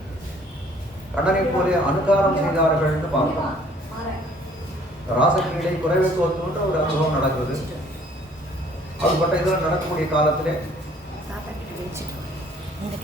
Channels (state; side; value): normal; both; correlation 0.58